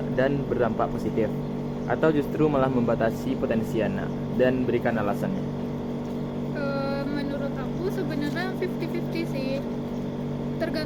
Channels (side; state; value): both; identical; correlation 1.00